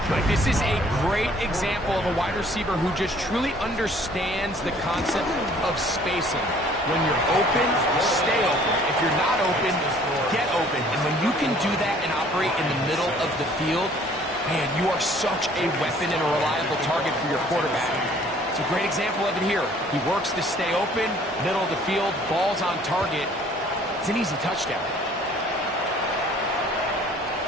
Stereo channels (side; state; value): both; normal; correlation 0.56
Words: Like, this is a great example of a wide receiver who just truly understands the concept of spacing. When you're open, stay open. If you're not open, get open. And when you can do that and operate in the middle of the field, man, you are such a weapon and a reliable target for your quarterback. It's a great example of it here. He works to stay open, middle of the field, ball's on target. It's an easy touchdown.